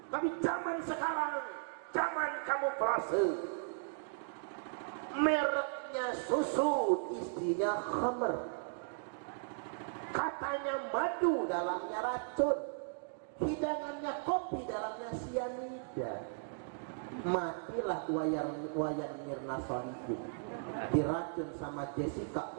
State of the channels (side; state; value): left; silent; digital silence